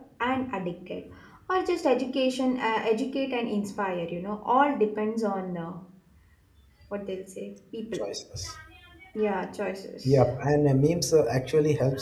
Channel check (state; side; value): identical; both; correlation 1.00